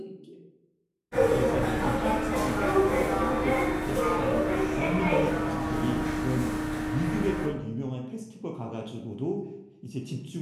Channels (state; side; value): identical; both; correlation 1.00